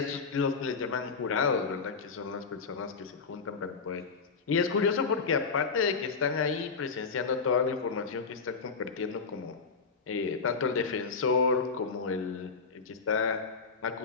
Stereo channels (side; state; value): right; quieter; 5.0 dB